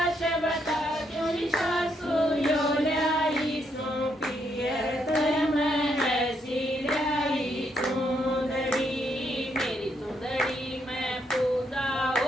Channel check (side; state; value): both; normal; correlation 0.76